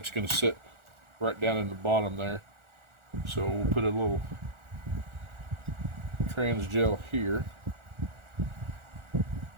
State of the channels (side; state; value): left; late; 1.4 ms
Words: going to sit right down in the bottom there. So we'll put a little TRANSGO here.